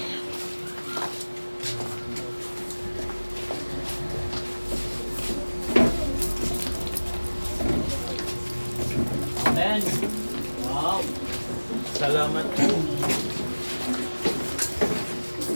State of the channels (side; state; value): both; inverted; correlation -1.00